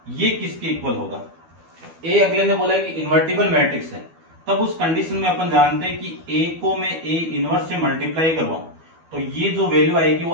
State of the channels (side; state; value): left; late; 12 ms